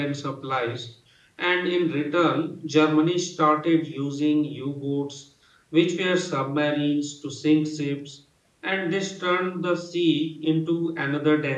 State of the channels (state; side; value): identical; both; correlation 1.00